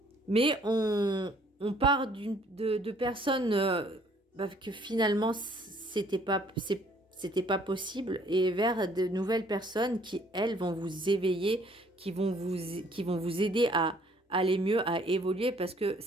mais on part de personnes... que finalement c'était pas possible et vers de nouvelles personnes qui elles vont vous éveiller, qui vont vous aider à aller mieux, à évoluer parce que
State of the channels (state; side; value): normal; both; correlation 0.60